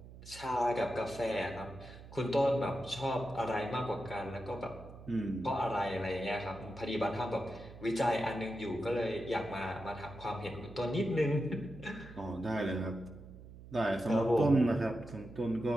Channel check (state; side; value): noise; right; hum, 16 dB below the sound